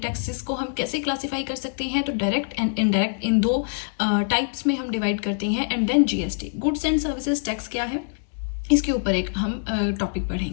को हम कैसे क्लासिफाई कर सकते हैं। तो डायरेक्ट एंड इनडायरेक्ट इन दो टाइप्स में हम डिवाइड करते हैं। And then GST, goods and services tax क्या है, इसके ऊपर एक हम टॉपिक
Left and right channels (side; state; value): right; silent; digital silence